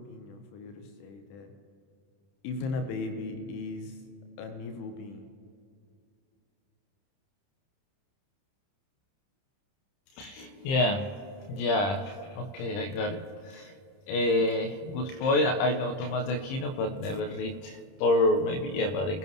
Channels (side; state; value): right; late; 30 ms